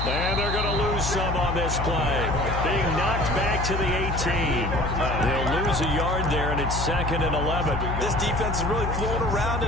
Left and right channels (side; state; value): left; noise; hum, 3 dB below the sound